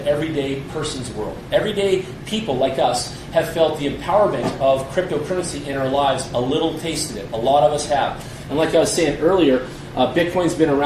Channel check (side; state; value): both; identical; correlation 1.00